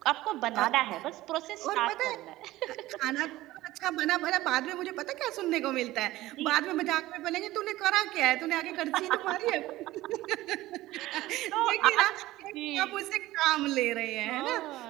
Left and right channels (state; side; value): quieter; left; 16.9 dB